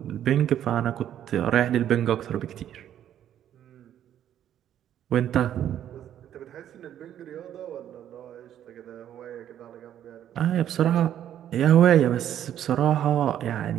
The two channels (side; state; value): left; quieter; 10.7 dB